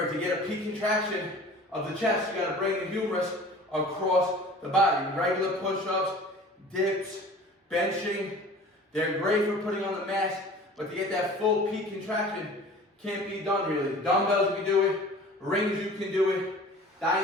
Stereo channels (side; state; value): both; normal; correlation 0.44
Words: to get a peak contraction of the chest, you got to bring the humerus across the body. Regular push-ups, dips, benching, they're great for putting on the mass, but to get that full peak contraction can't be done really. Dumbbells you can do it, rings you can do it,